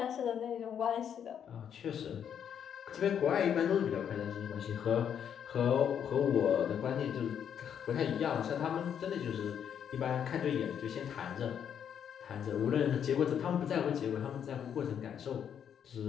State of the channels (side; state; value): right; quieter; 8.5 dB